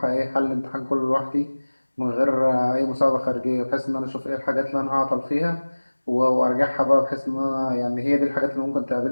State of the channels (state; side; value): inverted; both; correlation -1.00